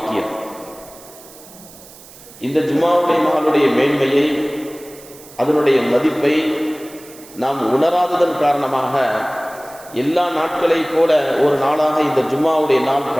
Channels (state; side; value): noise; right; hiss, 20 dB below the sound